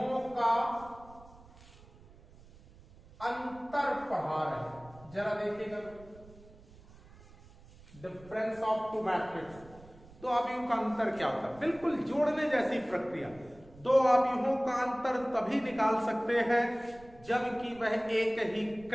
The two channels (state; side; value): noise; right; rumble, 22 dB below the sound